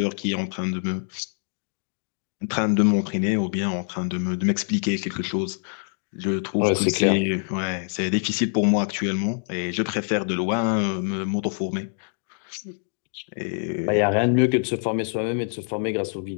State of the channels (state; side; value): silent; right; digital silence